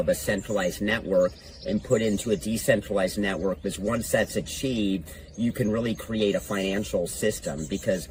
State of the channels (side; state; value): both; identical; correlation 1.00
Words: a centralized network and put into a decentralized network, because once that's achieved, you can really create a financial system, because